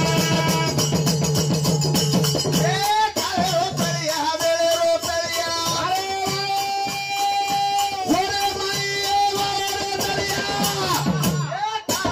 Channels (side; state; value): both; identical; correlation 1.00